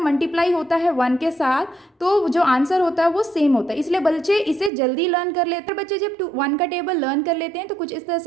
होता है 1 के साथ तो जो आंसर होता है वो सेम होता है, इसलिए बच्चे इसे जल्दी लर्न कर लेते हैं। बच्चे जब 1 का टेबल लर्न कर लेते हैं तो कुछ इस तरह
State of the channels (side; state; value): left; drops out; at 4.7 s